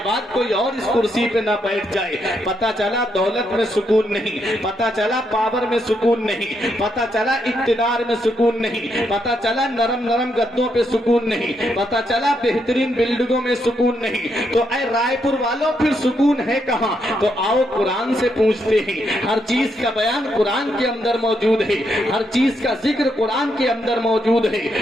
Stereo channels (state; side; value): normal; both; correlation 0.78